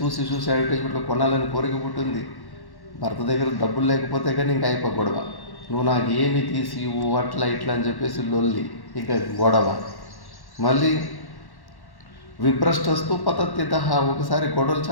అడ్వర్టైజ్మెంట్లో కొనాలని కోరిక పుట్టింది. భర్త దగ్గర డబ్బులు లేకపోతే కానీ ఇంకా అయిపో గొడవ. నువ్వు నాకు ఏమి తీసి అట్లా ఇట్లా అని చెప్పేసి లొల్లి, ఇంకా గొడవ. మళ్ళీ విభ్రష్టస్తు పతత్యదః, ఒకసారి గొడవలు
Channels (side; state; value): right; late; 1.1 ms